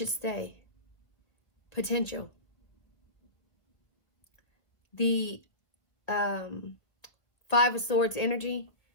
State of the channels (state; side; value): late; right; 1.3 ms